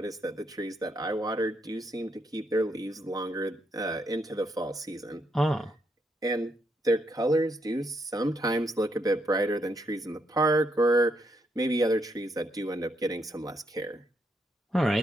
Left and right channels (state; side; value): normal; both; correlation 0.77